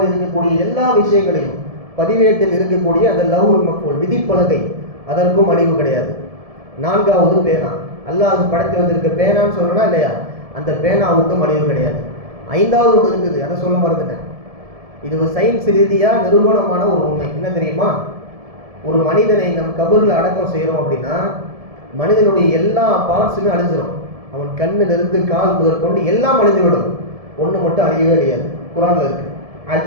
இருக்கக்கூடிய எல்லா விஷயங்களையும் பதிவேட்டில் இருக்கக்கூடிய அந்த லவ்ஹுல் மஹ்ஃபூல், விதிப்பலகை, அதற்கும் அழிவு கிடையாது. 4வது பேனா. அல்லாஹ் படைத்து வந்திருக்க பேனான்னு சொல்லணும்னா இல்லையா, அந்த பேனாவுக்கும் அழிவு கிடையாது. 5வது ஒன்று இருக்குது, அதை சொல்ல மறந்துட்டேன். இது ஒரு சயின்ஸ் ரீதியாக நிரூபணமான ஒரு உண்மை. என்ன தெரியுமா, ஒரு மனிதனை நம் கபூரில் அடக்கம் செய்கிறோம் அப்படின்னா மனிதனுடைய எல்லா பார்ட்ஸுமே அழிஞ்சிடும். அவன் கண்ணிலிருந்து கால் முதற்கொண்டு எல்லாம் அழிந்துவிடும். ஒன்று மட்டும் அழியவே அழியாது. குரான்ல இருக்கு,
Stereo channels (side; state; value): left; late; 1.7 ms